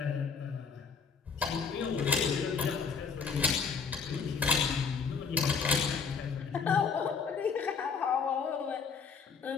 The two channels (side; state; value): right; quieter; 5.7 dB